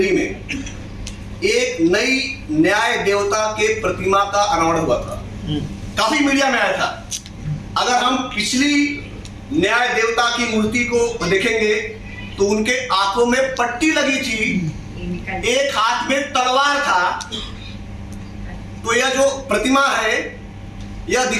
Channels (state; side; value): identical; both; correlation 1.00